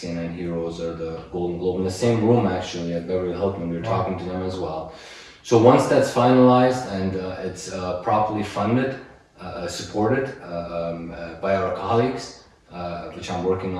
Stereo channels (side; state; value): both; identical; correlation 1.00